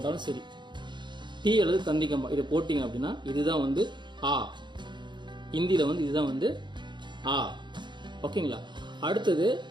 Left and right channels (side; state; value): left; late; 0.22 ms